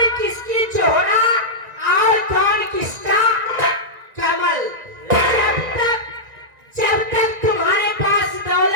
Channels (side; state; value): left; late; 1.9 ms